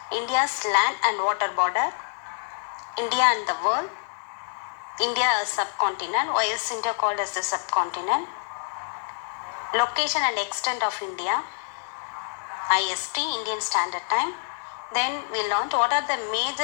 India's land and water border, India and the world, India as subcontinent. Why is India called as the subcontinent? Location and extent of India, IST, Indian Standard Time. Then we learned what are the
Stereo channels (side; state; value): right; silent; digital silence